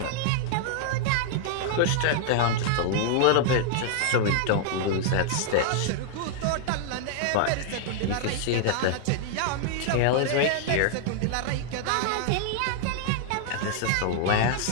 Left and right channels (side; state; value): both; different; correlation -0.01